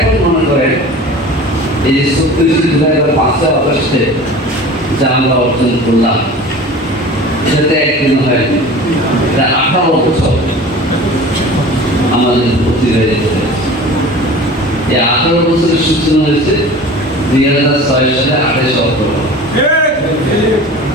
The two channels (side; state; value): both; normal; correlation 0.39